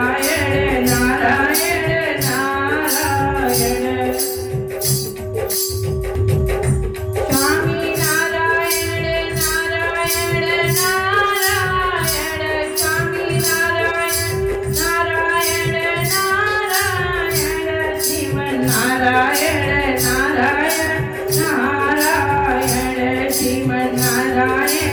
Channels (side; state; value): both; identical; correlation 1.00